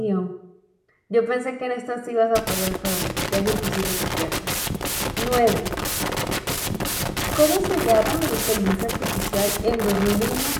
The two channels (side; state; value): both; identical; correlation 1.00